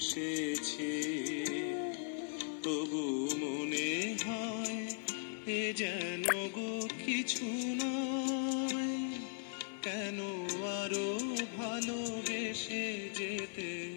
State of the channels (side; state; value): right; silent; 52 dB below the other